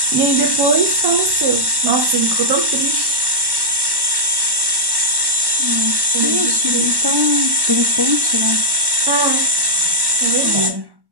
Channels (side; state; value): left; late; 1.1 ms